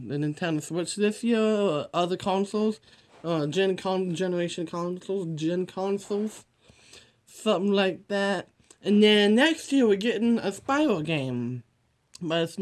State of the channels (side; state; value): both; identical; correlation 1.00